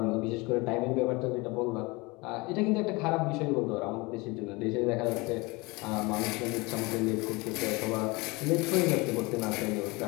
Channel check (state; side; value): quieter; right; 25.0 dB